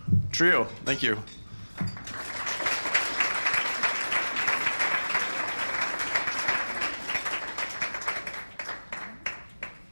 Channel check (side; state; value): both; inverted; correlation -1.00